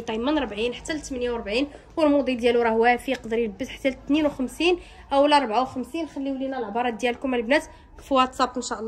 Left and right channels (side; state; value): both; identical; correlation 1.00